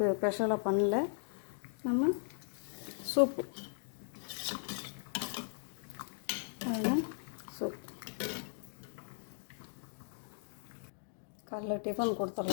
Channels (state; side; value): silent; right; digital silence